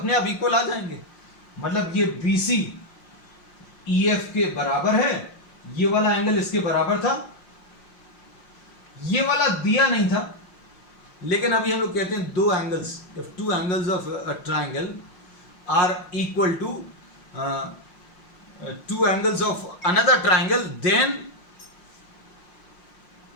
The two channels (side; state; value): right; late; 5.6 ms